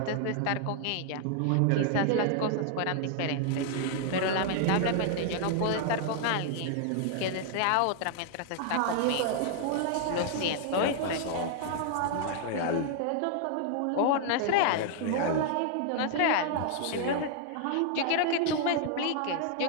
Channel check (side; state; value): both; different; correlation -0.01